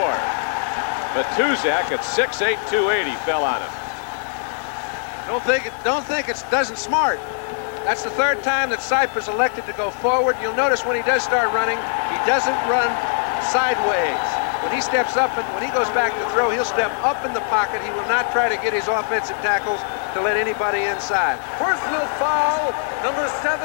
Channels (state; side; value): silent; right; digital silence